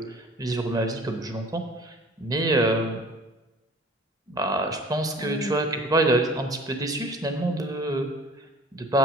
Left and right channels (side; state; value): both; normal; correlation 0.47